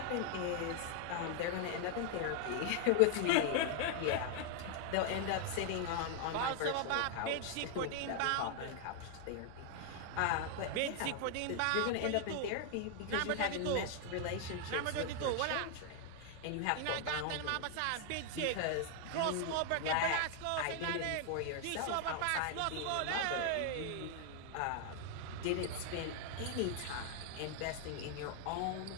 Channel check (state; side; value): different; both; correlation 0.00